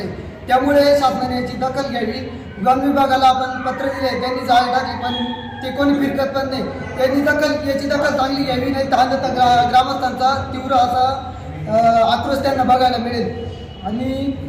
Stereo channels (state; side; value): identical; both; correlation 1.00